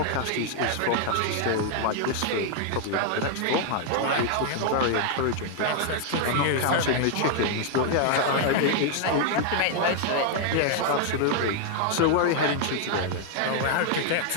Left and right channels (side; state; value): both; different; correlation 0.00